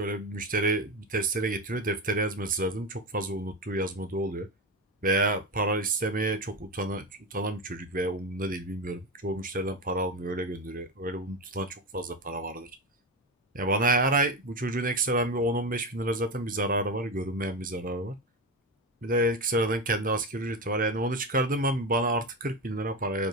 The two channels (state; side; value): normal; both; correlation 0.17